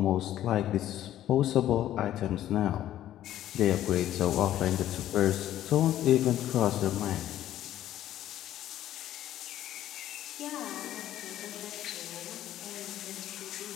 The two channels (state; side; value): quieter; right; 12.5 dB